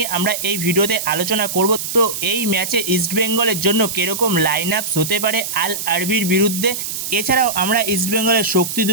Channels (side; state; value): right; noise; hiss, 5 dB below the sound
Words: আমরা এই ভিডিওতে আলোচনা করব। তো এই ম্যাচে ইস্টবেঙ্গলের জন্য কীরকম লাইন আপস হতে পারে আল আরবির বিরুদ্ধে, এছাড়াও আমরা ইস্টবেঙ্গলের শক্তি